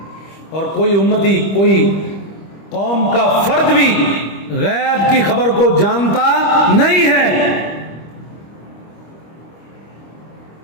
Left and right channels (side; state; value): right; late; 25 ms